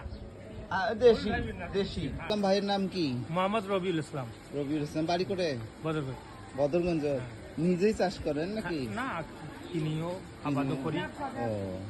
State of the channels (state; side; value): identical; both; correlation 1.00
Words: দেশি দেশি। ভাইয়ের নাম কি? মোহাম্মদ রবিউল ইসলাম। রবিউল ইসলাম। বাড়ি করে বদরগঞ্জ। বদরগঞ্জ। নিজেই চাষ করেন নাকি? না, কিনিও আবাদও করি। ও,